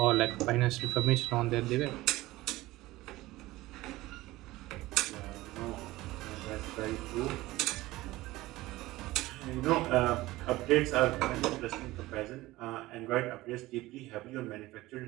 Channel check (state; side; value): quieter; left; 18.3 dB